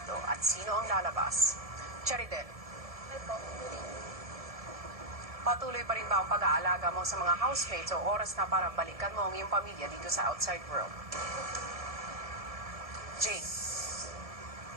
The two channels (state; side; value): late; left; 1.7 ms